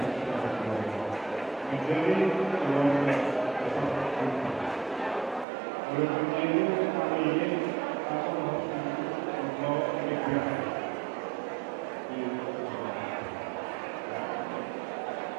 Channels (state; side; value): drops out; left; at 5.5 s